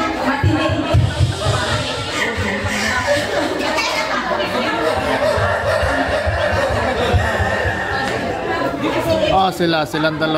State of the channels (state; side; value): identical; both; correlation 1.00